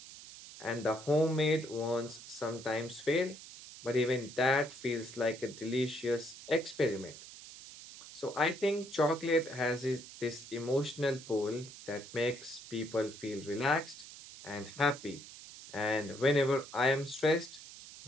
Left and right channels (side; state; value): right; noise; hiss, 15 dB below the sound